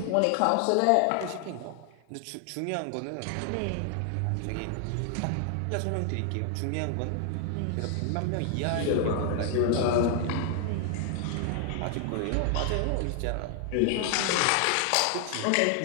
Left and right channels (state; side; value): different; both; correlation 0.00